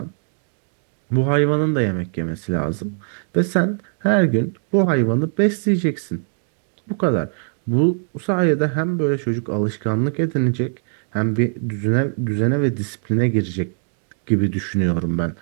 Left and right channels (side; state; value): left; silent; digital silence